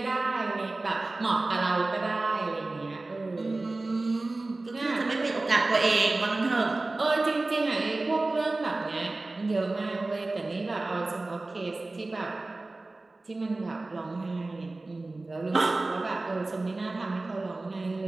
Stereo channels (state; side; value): quieter; left; 3.1 dB